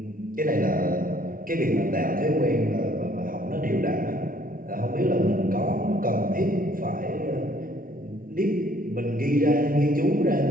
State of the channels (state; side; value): late; left; 0.41 ms